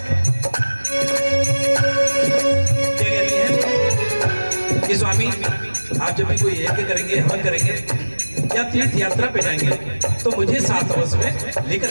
क्या कहती है कि स्वामी आप जब भी कोई यज्ञ करेंगे, हवन करेंगे या तीर्थ यात्रा पे जाएंगे तो मुझे साथ अवश्य में लेकर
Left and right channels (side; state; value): both; inverted; correlation -1.00